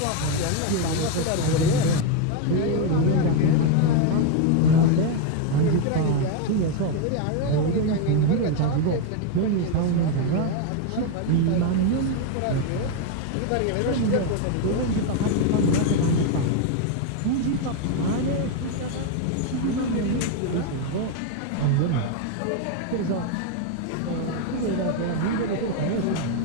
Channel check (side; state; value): both; different; correlation 0.01